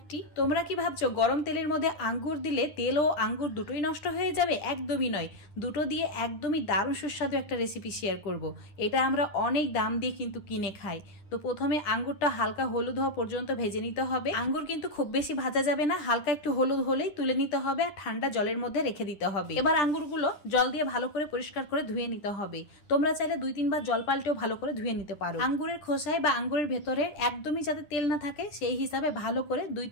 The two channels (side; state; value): right; late; 10 ms